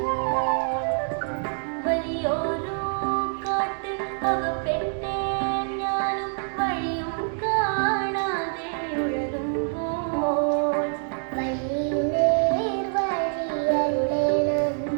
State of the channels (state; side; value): silent; left; 57 dB below the other